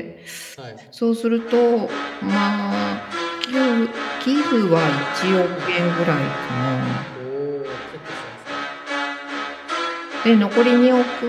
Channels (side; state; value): both; identical; correlation 1.00